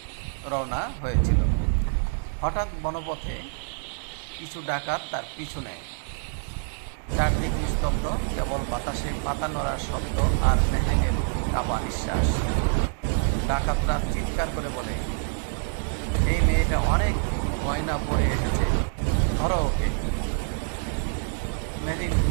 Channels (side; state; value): left; silent; 58 dB below the other